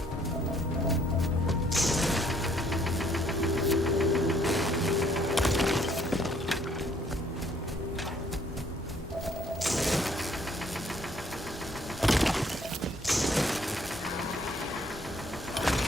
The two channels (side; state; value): both; normal; correlation 0.64